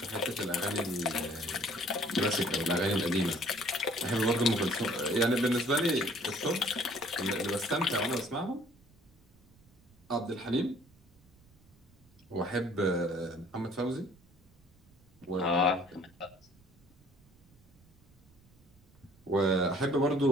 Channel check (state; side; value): noise; right; rumble, 29 dB below the sound